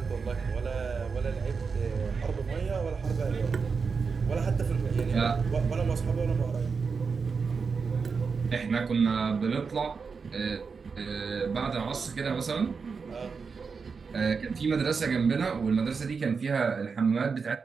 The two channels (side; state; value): left; quieter; 5.2 dB